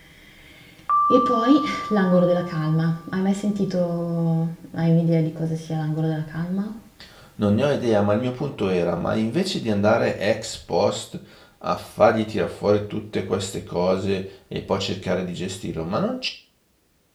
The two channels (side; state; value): both; identical; correlation 1.00